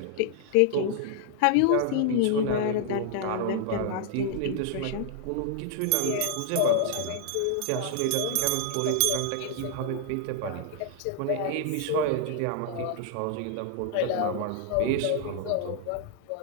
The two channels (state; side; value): different; both; correlation 0.00